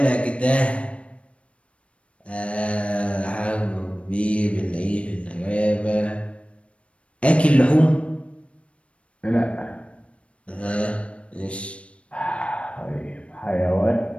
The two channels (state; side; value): late; right; 0.061 ms